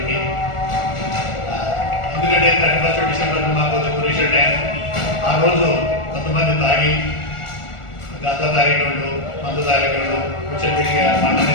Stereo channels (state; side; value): late; right; 1.4 ms